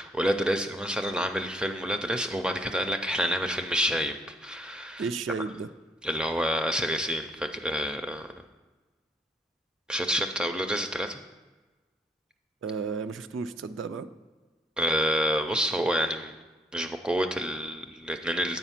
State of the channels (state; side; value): normal; both; correlation 0.68